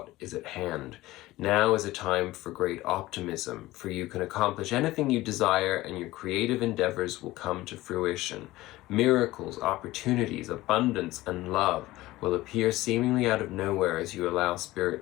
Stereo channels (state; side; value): quieter; right; 17.8 dB